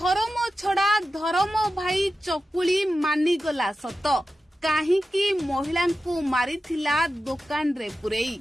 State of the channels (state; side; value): normal; both; correlation 0.93